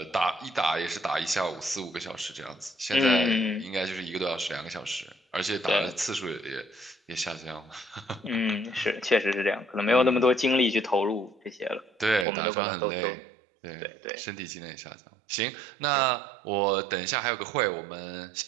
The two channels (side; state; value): left; drops out; at 12.2 s